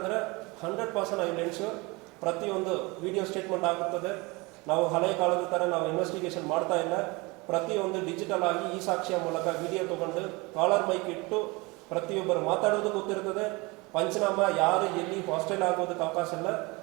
100% ಐ ವಿಲ್ ಎನ್ಶೂರ್ ಪ್ರತಿಯೊಂದು ವಿಡಿಯೋ ಸ್ಟೇಟ್ಮೆಂಟ್ ಆಗುತ್ತದೆ. ನಾವು ಹಳೆಯ ಕಾಲದ ಥರ ನಾವು ಇನ್ವೆಸ್ಟಿಗೇಷನ್ ಮಾಡ್ತಾ ಇಲ್ಲ. ಪ್ರತಿಯೊಂದು ಡಿಜಿಟಲ್ ಆಗಿ ಈ ಸಾಕ್ಷಿಯ ಮೂಲಕ ವಿಡಿಯೋ ತೊಗೊಂಡು ಕಾಲರ್ ಮೈಕ್ ಇಟ್ಟು ಪ್ರತಿಯೊಬ್ಬರು ಮಾತಾಡೋದು ಗೊತ್ತಿರ್ತದೆ. ಪಂಚನಾಮ ಯಾರು ಎಲ್ಲಿ ಹಾಸ್ಟೆಲ್ ಆಗೋದಕ್ಕೆ ಅವಕಾಶ ಇಲ್ಲ.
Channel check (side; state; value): left; quieter; 25.2 dB